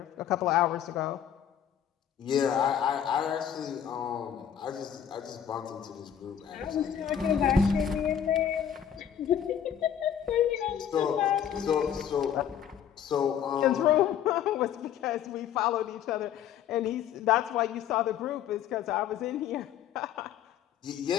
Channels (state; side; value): quieter; right; 9.3 dB